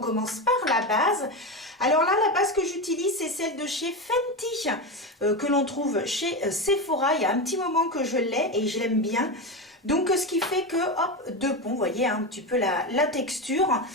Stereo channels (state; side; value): normal; both; correlation 0.17